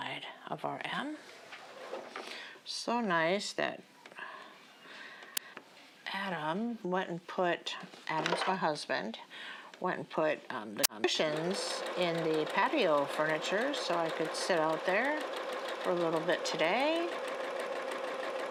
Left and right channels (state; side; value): identical; both; correlation 1.00